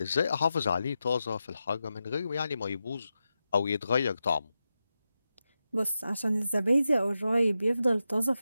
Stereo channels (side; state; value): both; inverted; correlation -0.90